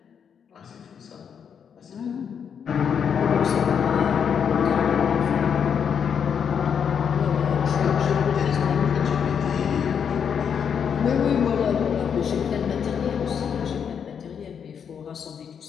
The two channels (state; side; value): quieter; right; 7.4 dB